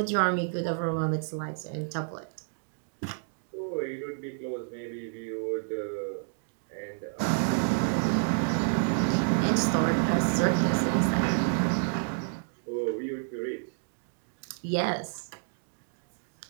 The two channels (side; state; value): left; silent; digital silence